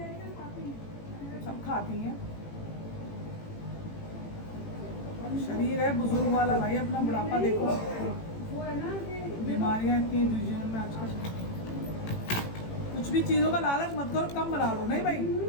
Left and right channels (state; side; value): late; right; 18 ms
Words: सब खाती हैं। शरीर है बुजुर्ग वाला भाई, अपना बुढ़ापा देखो, बीमारियां इतनी जीवन में आजकल। कुछ भी चीजों का लालच मत करो, कम बना लो। नहीं भाई,